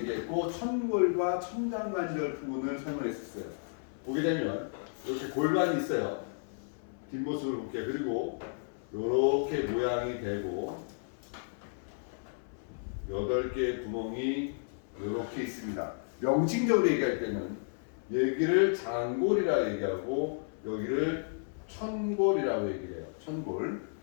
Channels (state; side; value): silent; right; 56 dB below the other